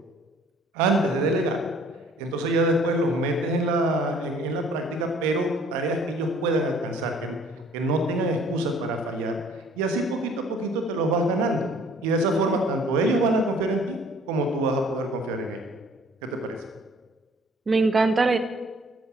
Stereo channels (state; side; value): normal; both; correlation 0.56